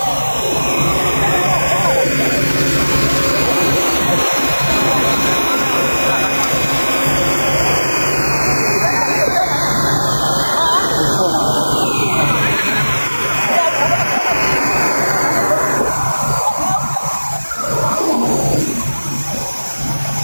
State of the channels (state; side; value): inverted; both; correlation -1.00